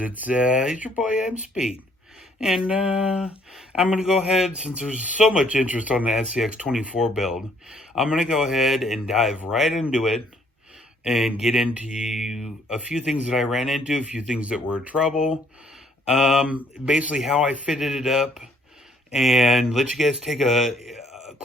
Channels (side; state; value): both; normal; correlation 0.65